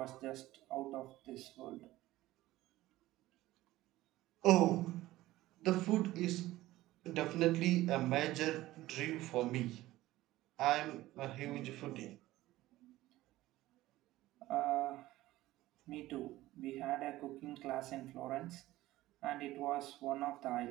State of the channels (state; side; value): quieter; left; 16.6 dB